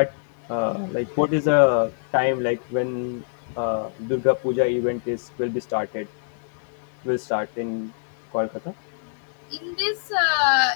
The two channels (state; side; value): silent; right; digital silence